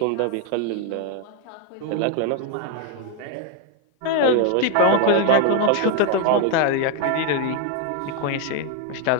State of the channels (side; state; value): both; different; correlation 0.00